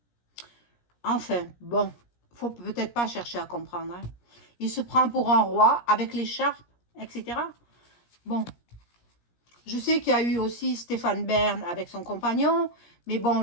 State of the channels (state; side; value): late; right; 17 ms